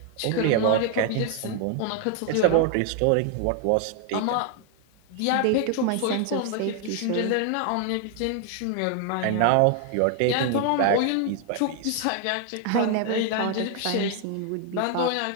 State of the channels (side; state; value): both; different; correlation 0.00